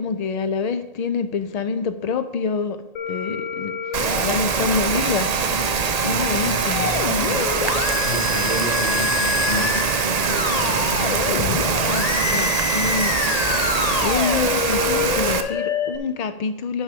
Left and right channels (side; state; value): right; late; 1.8 ms